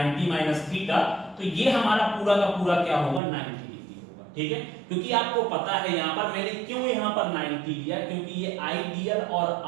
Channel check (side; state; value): left; drops out; at 3.2 s